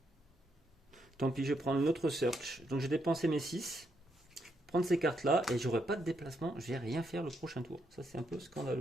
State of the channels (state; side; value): normal; both; correlation 0.78